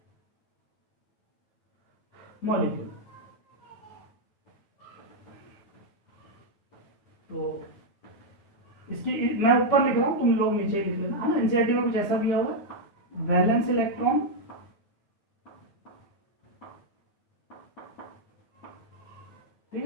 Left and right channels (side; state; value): right; late; 9.4 ms